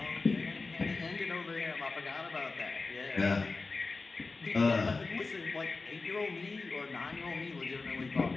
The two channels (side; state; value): right; quieter; 3.9 dB